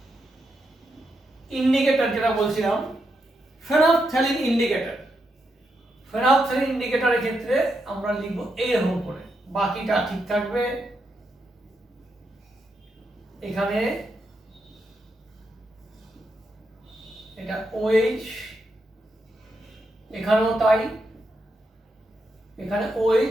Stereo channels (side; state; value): both; normal; correlation 0.83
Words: ইন্ডিকেটর যেটা বলছিলাম, ফেনফথ্যালিন ইন্ডিকেটর, ফেনফথ্যালিন ইন্ডিকেটরের ক্ষেত্রে আমরা লিখব এইরকম করে, বাকিটা ঠিক থাকবে। এখানে এটা OH, এখানেও তাই, এখানে